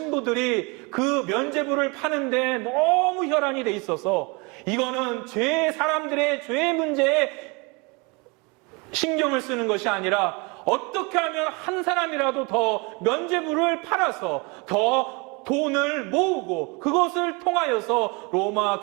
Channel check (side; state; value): left; quieter; 29.1 dB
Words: 그 면죄부를 파는데 너무 혈안이 돼 있어서 이거는 사람들의 죄 문제에 신경을 쓰는 것이 아니라 어떻게 하면 한 사람이라도 더 면죄부를 팔아서 더 돈을 모으고 그것을 통하여서 로마